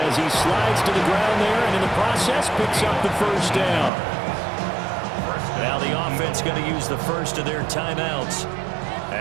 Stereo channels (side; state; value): left; drops out; at 3.9 s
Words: he slides to the ground there and in the process picks up the first down. Now the offense going to use the first of their timeouts